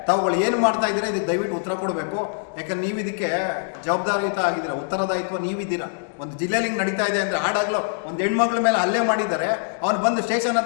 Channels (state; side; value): silent; right; digital silence